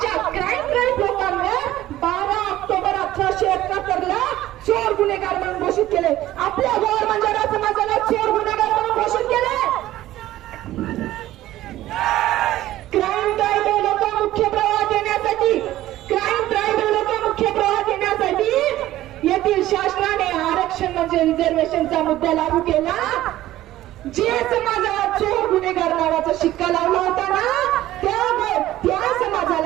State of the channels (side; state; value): left; quieter; 14.7 dB